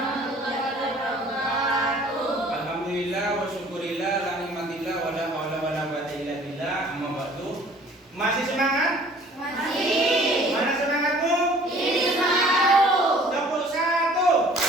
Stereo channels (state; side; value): normal; both; correlation 0.52